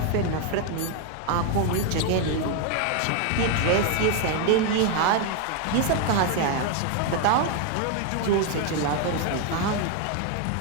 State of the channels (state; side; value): different; both; correlation 0.01